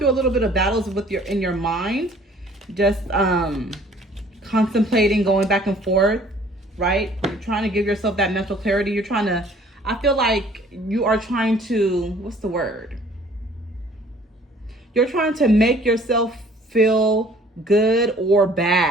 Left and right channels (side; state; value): both; normal; correlation 0.55